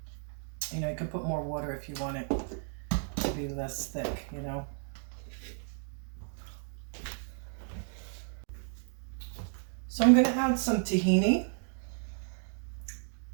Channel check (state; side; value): silent; left; 56 dB below the other